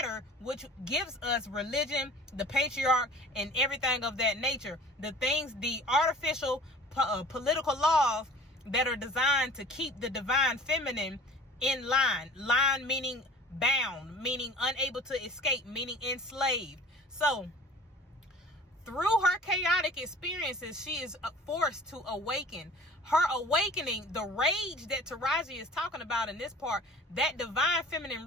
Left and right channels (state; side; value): normal; both; correlation 0.45